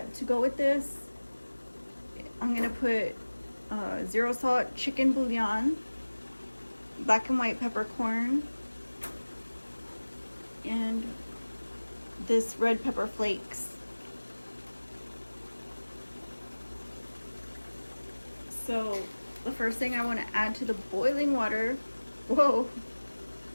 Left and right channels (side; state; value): both; inverted; correlation -1.00